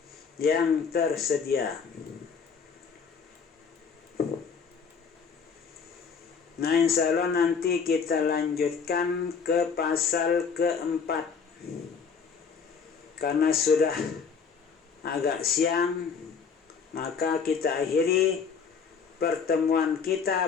yang tersedia. Insya Allah nanti kita lanjutkan ke pasal keempat. Karena sudah agak siang, maka kita akhiri pertemuan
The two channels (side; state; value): right; quieter; 6.0 dB